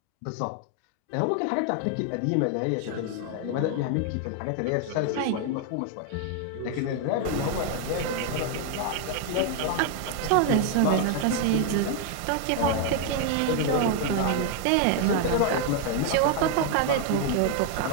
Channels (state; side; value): different; both; correlation 0.00